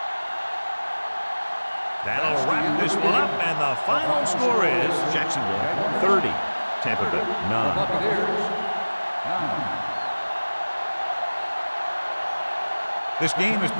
That'll wrap this one up, and the final score is Jacksonville 30, Tampa Bay 9. Buccaneers, 9. This game is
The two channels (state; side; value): inverted; both; correlation -1.00